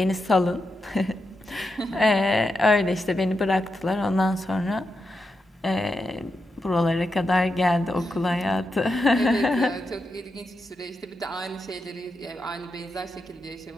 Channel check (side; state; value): both; normal; correlation 0.86